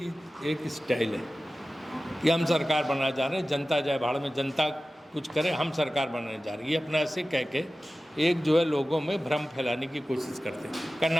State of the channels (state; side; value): normal; both; correlation 0.96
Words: एक स्टाइल है कि हम सरकार बनाना चाह रहे हैं, जनता जाए भाड़ में, जनता कुछ करे, हम सरकार बनाने जा रहे हैं। ये अपना ऐसे कह के एक जो है लोगों में भ्रम फैलाने की कोशिश करते हैं।